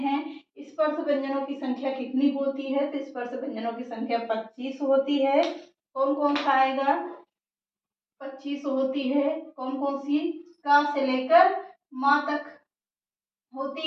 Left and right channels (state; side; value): identical; both; correlation 1.00